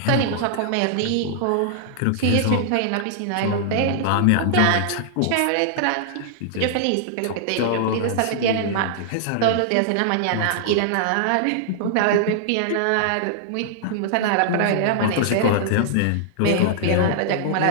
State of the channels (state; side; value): different; both; correlation -0.01